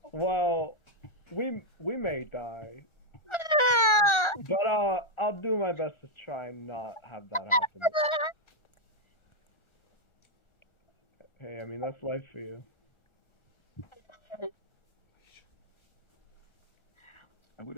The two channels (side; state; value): right; late; 1.4 ms